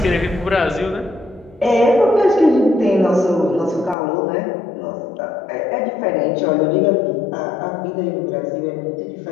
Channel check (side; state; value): right; drops out; at 4.0 s